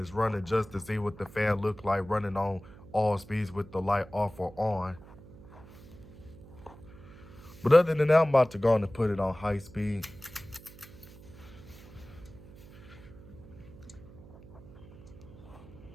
running just to see what the fan look like running on all speeds with the light off or on. But other than that, I'm about to go on and put it on high speed.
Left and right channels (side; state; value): right; noise; hum, 19 dB below the sound